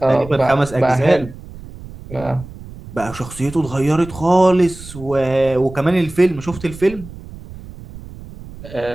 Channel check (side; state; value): right; noise; rumble, 16 dB below the sound